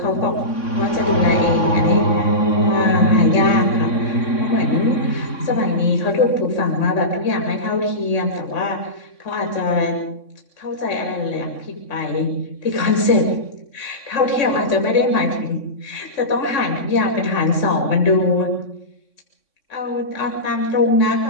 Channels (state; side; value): late; right; 3.6 ms